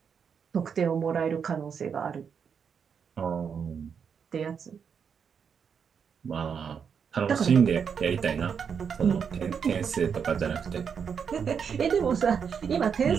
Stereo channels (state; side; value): quieter; left; 6.8 dB